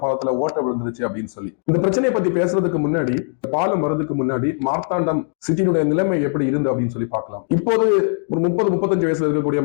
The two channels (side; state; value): right; silent; 62 dB below the other